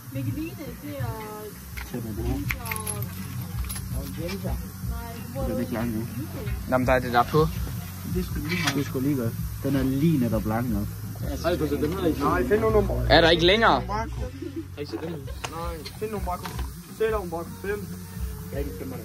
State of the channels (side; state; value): both; identical; correlation 1.00